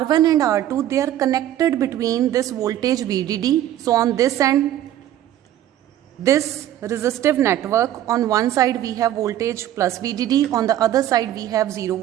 and R2, they are connected between this voltage VDD. So on this end, this resistive network, on one side we have voltage plus VDD, on the other side we have 0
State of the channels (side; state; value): left; quieter; 12.4 dB